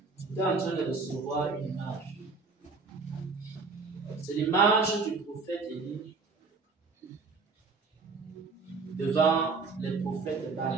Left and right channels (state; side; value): quieter; left; 4.3 dB